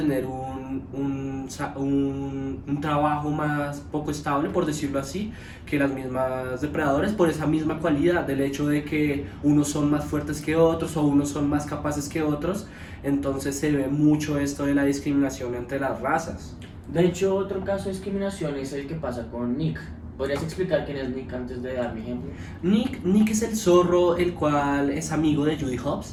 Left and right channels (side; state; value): both; identical; correlation 1.00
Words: un trabajo más poco estable, por decirlo así, que las mismas depredadores, por esa misma cualidad del hecho de que unos son más fuertes que otros o unos son más capaces que otros. Entonces se ve mucho esto de la discriminación entre las razas. De hecho, otro caso de discriminación es el que pasa con Nick. ¿Podrías explicar quién es Nick antes de dar mi ejemplo? Nick es el zorro, el cual es amigo de Judy